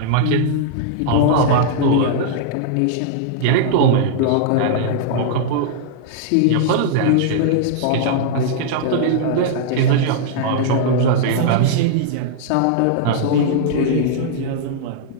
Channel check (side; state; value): both; different; correlation -0.01